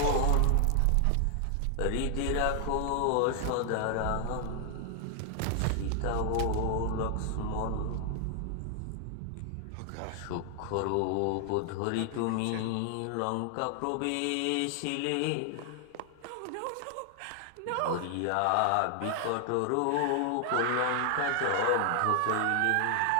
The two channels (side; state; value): both; different; correlation 0.00